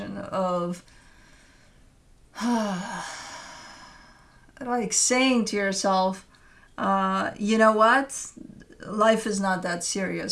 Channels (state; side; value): identical; both; correlation 1.00